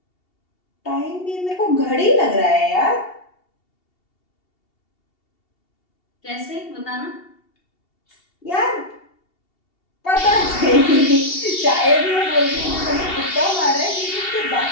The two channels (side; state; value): right; late; 2.7 ms